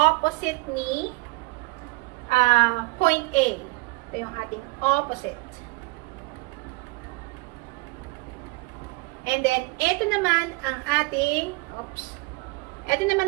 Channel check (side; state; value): left; quieter; 24.3 dB